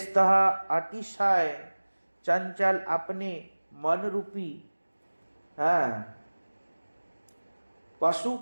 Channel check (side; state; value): both; inverted; correlation -1.00